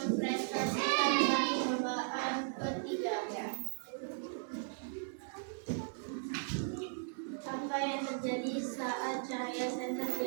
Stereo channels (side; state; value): left; silent; 53 dB below the other